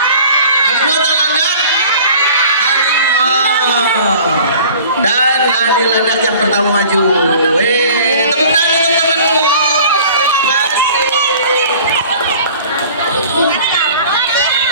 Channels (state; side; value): inverted; both; correlation -0.47